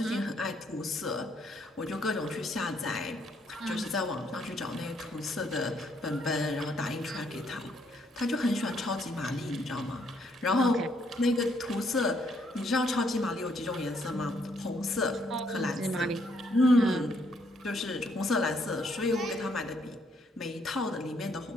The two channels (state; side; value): normal; both; correlation 0.71